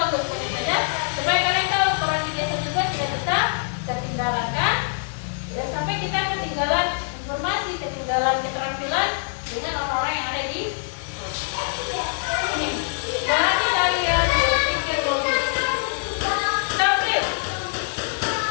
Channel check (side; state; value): right; silent; 63 dB below the other